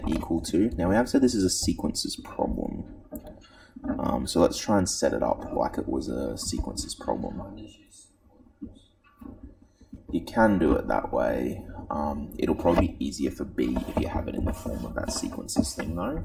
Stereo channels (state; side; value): identical; both; correlation 1.00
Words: equal to, now we have said this is a sequences problem. So let's try and set it up like it was a sequences problem. You can do it that way. It'll probably be easier for B if you have it in the form of that sequences thing though.